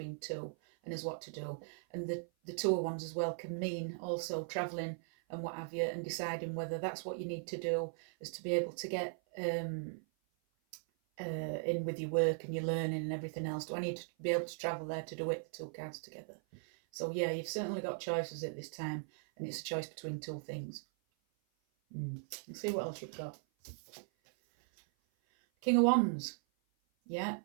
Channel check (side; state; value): left; silent; 52 dB below the other